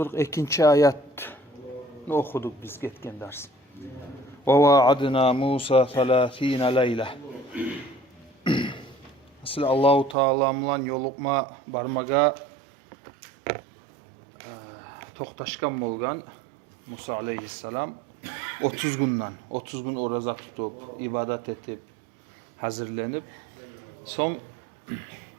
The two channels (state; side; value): drops out; left; at 10.2 s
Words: ayatni okuduk biz ketken ders. Ve vaadna Musa 30 leyla. Asıl Allahu Teala bilan yolukma barmaga to'xtashgan bo'lgan Musa aleyhisselam 30 gün oraza tutup, ibadet etip, hazırlanıp, son